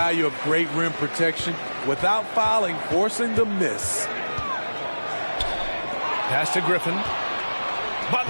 of great rim protection without fouling, forcing the miss. Pass to Griffin.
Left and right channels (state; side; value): inverted; both; correlation -1.00